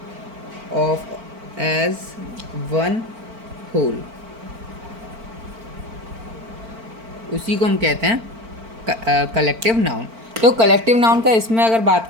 of as one whole, उसी को हम कहते हैं कलेक्टिव नाउन। तो कलेक्टिव नाउन का इसमें अगर बात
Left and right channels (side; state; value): left; late; 4.4 ms